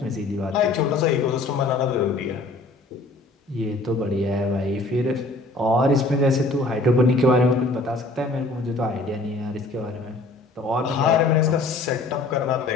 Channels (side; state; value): right; quieter; 3.1 dB